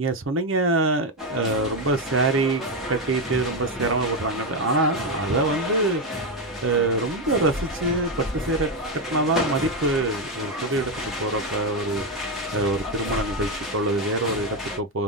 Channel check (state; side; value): normal; both; correlation 0.08